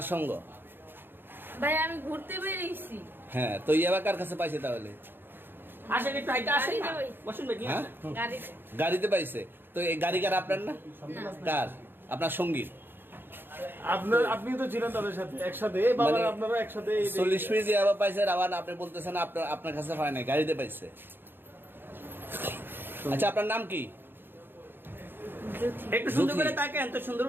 সঙ্গ? ভাই আমি ঘুরতে বেরিয়েছি। হ্যাঁ, তো ইয়াবা কার কাছে পাইছে তাহলে? আসেন একটু হাইটা আসেন না। গাড়িতে বসুন ভাই, নিয়ে হ্যাঁ? আসেন। গাড়িতে গাড়িতে পাইছে। তো এই গাড়ি কার, আপনার না? না। কার? আপনার সঙ্গী? আপনি তো ছিলেন তাদের সাথে একসাথে, বাবা মানে আপনারা একসাথে 40 পিস ইয়াবা পাইছে, আবার আপনি বলতেছেন আপনার কাছে হয় নাই, গাড়িতে পাইছে। আচ্ছা, আপনার নাম কি? একটু সুন্দর জুথি। করে তাকান তো, সুন্দর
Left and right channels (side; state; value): left; late; 0.10 ms